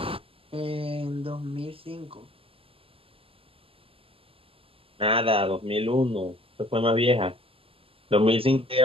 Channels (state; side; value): late; left; 0.27 ms